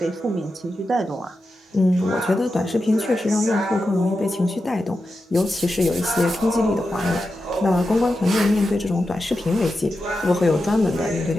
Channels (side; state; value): both; normal; correlation 0.90